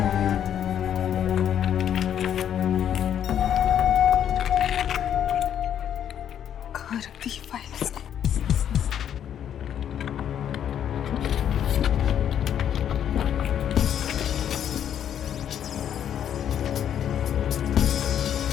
कहाँ रख दी ये फाइल इसने?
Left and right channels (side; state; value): right; quieter; 9.6 dB